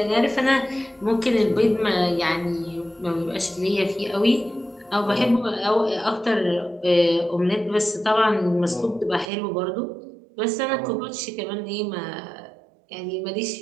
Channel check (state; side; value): drops out; left; at 9.3 s